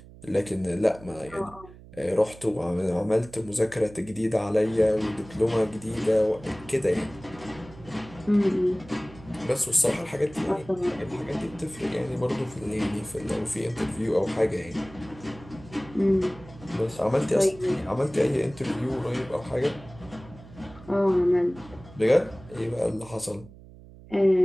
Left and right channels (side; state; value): right; noise; hum, 20 dB below the sound